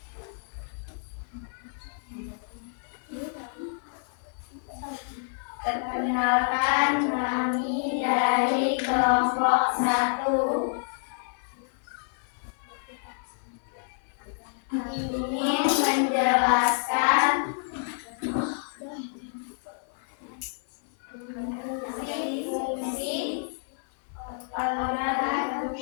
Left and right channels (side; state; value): right; silent; 58 dB below the other